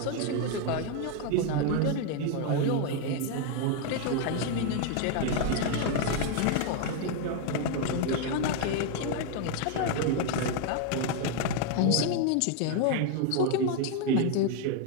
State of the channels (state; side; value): different; both; correlation 0.01